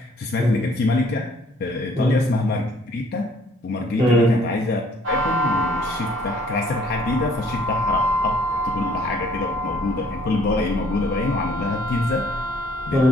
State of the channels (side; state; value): both; normal; correlation 0.60